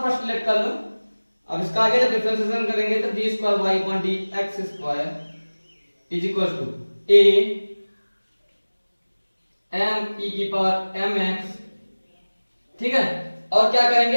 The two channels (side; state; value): both; inverted; correlation -1.00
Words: फर्स्ट लेट कर लो। अब इसका आगे जब डिफरेंशिएशन करेंगे तो d square Y upon D x square is equal to a m e की पावर m x। ठीक है, और क्या